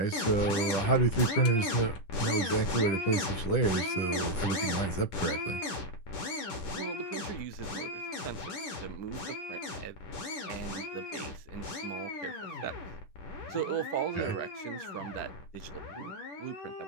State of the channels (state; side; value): late; right; 10 ms